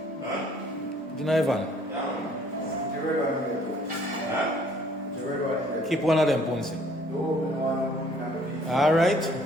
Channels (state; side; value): normal; both; correlation 0.60